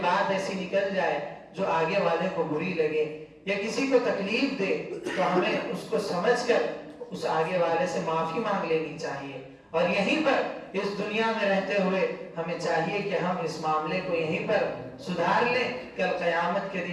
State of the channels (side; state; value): both; identical; correlation 1.00